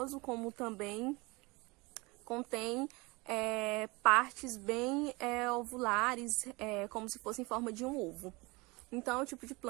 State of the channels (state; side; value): quieter; left; 25.0 dB